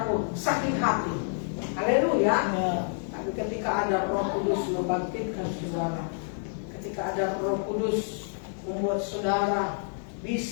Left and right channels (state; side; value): silent; right; digital silence